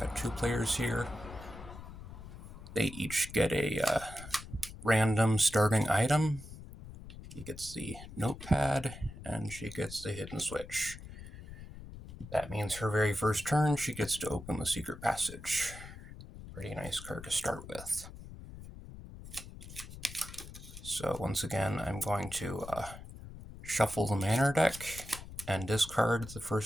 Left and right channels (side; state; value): left; noise; rumble, 14 dB below the sound